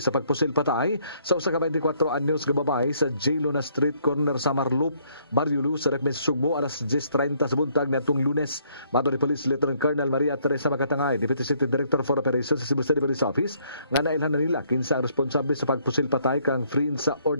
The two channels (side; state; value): both; inverted; correlation -0.67